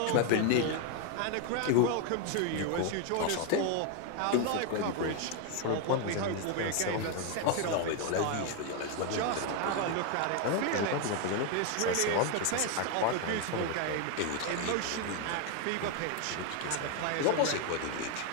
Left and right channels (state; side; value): different; both; correlation 0.01